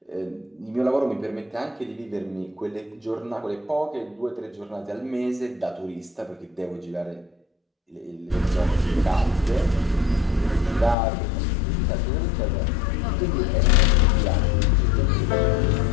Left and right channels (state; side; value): drops out; right; at 11.0 s